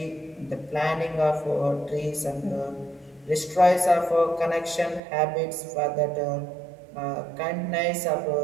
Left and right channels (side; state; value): left; drops out; at 5.0 s